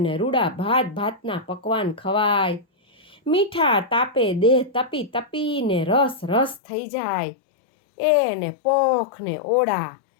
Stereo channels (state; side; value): drops out; right; at 6.6 s